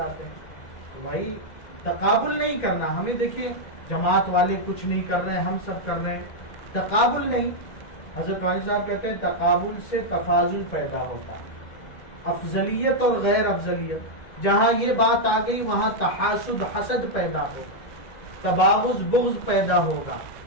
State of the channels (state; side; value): late; right; 2.1 ms